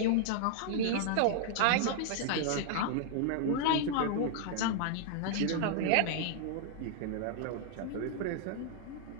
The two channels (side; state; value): both; different; correlation 0.00